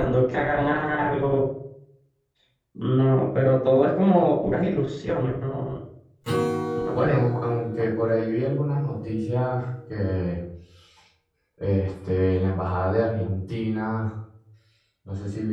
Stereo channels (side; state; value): both; identical; correlation 1.00